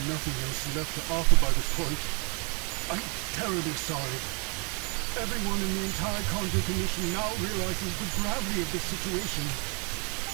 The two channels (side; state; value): left; quieter; 35.1 dB